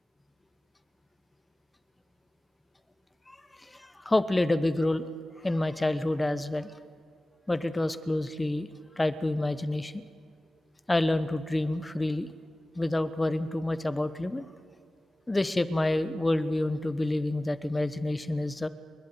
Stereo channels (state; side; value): normal; both; correlation 0.98